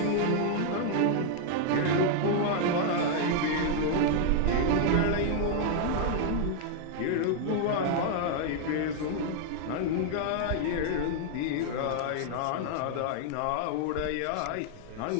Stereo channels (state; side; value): different; both; correlation 0.00